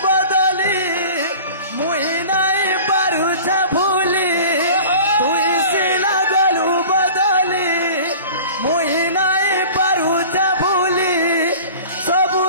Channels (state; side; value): inverted; both; correlation -0.41